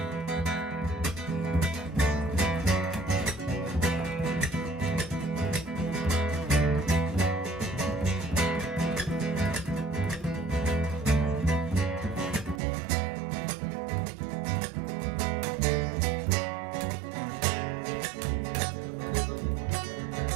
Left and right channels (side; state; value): left; drops out; at 12.6 s